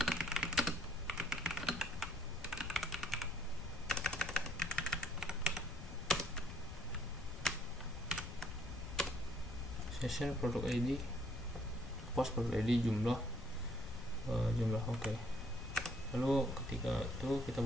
Session produk ID, post produk ID jumlah oke. Lalu ketika itu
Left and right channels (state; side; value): noise; left; rumble, 10 dB below the sound